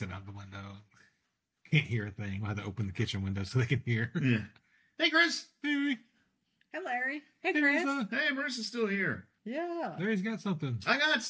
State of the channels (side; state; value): both; identical; correlation 1.00